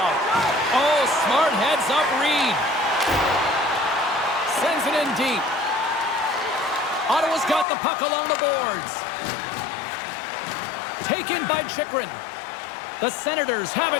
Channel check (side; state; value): right; drops out; at 7.7 s